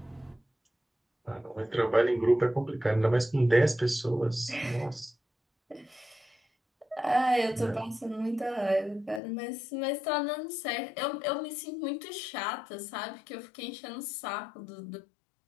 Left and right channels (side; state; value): right; drops out; at 9.2 s